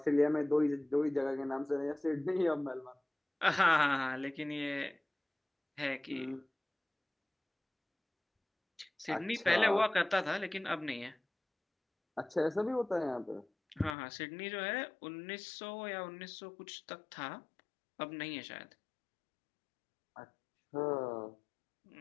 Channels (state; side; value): drops out; right; at 14.0 s